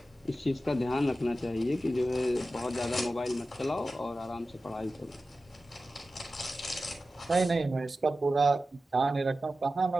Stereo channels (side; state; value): both; normal; correlation 0.94